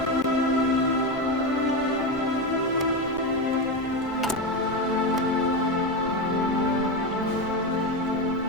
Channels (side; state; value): both; normal; correlation 0.15